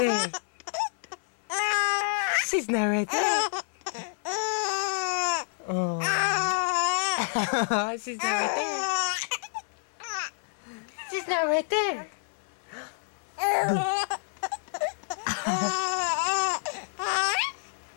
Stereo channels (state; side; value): silent; right; 59 dB below the other